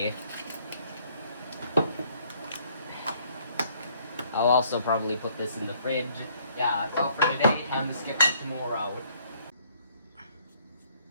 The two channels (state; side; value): inverted; both; correlation -0.64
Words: I'll also probably put this in the fridge. Yeah, that's all for today. Time to skip to tomorrow.